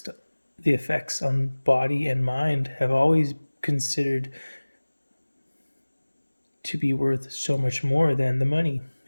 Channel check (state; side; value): inverted; both; correlation -1.00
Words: the effects on body and mind have always considered to be worth so much more than the money.